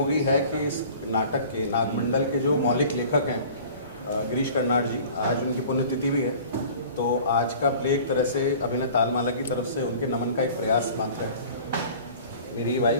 है कि इस नाटक के नागमंडल के जो मौलिक लेखक हैं गिरीश कर्नाड जी, आज उनकी पुण्यतिथि भी है। तो आज का प्ले एक तरह से अभिनय तालमाला की तरफ से उनके नमन का एक प्रयास मात्र है। मेरी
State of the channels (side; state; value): both; inverted; correlation -0.45